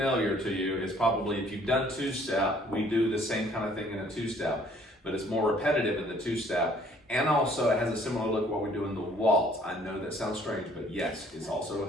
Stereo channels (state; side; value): normal; both; correlation 0.59